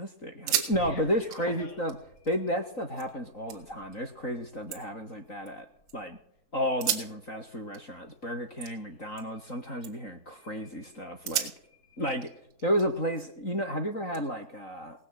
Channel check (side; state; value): right; late; 3.3 ms